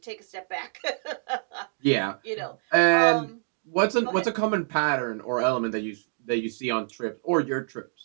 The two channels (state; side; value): silent; left; digital silence